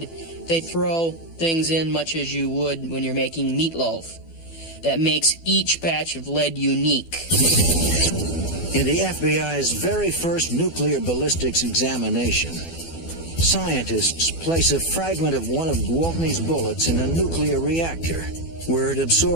they throw things in much as you would when you're making meatloaf. That makes each batch of lead unique. In the FBI's very first nuclear ballistics examination, scientists place a fragment of one of Gwaltney's bullets in a nuclear reactor, where it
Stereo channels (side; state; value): right; late; 12 ms